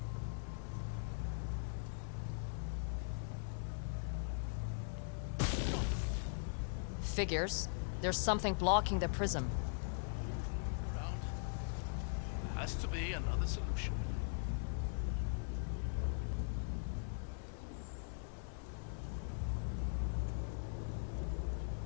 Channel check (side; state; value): right; silent; digital silence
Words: Figures. There's something blocking the prism. Look around. There has to be another solution.